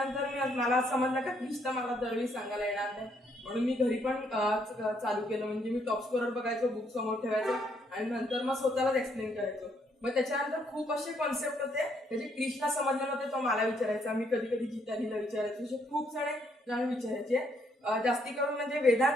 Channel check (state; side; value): normal; both; correlation 0.71